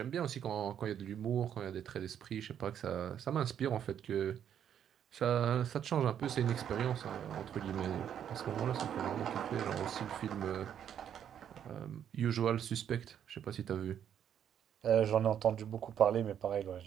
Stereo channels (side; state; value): left; quieter; 9.2 dB